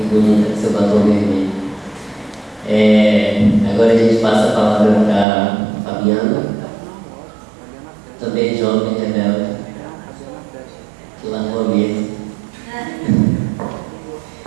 bonita, seu batom vermelho. Agora a gente passa a palavra para Fabiana, também jovem rebelde, que largou a mesa.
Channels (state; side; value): drops out; left; at 5.2 s